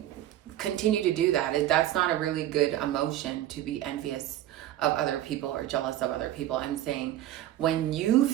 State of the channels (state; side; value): quieter; left; 13.1 dB